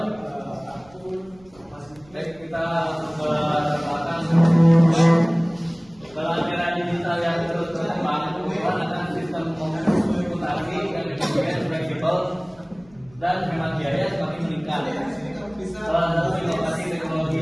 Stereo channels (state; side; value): noise; right; rumble, 28 dB below the sound